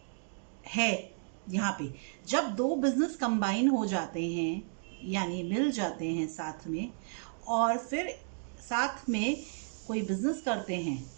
है यहाँ पे। जब दो बिजनेस कंबाइन हो जाते हैं यानी मिल जाते हैं साथ में, और फिर साथ में कोई बिजनेस करते हैं,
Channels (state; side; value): silent; left; digital silence